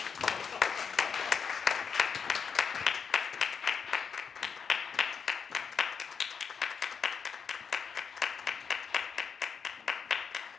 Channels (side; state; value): right; quieter; 6.3 dB